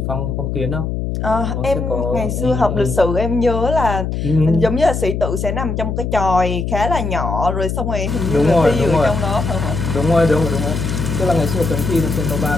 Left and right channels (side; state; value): left; noise; hum, 2 dB below the sound